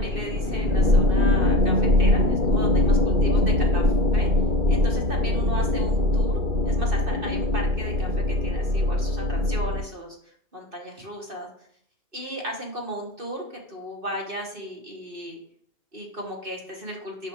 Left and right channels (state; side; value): late; left; 2.6 ms